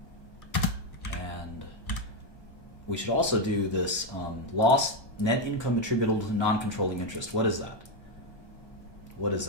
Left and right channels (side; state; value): right; late; 1.3 ms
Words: And we should also do this loss net income attributable to non-controlling interest. What is that? What is